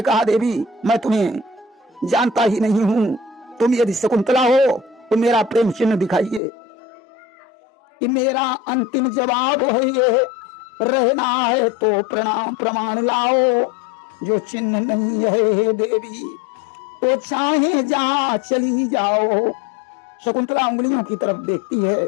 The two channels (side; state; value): right; drops out; at 6.4 s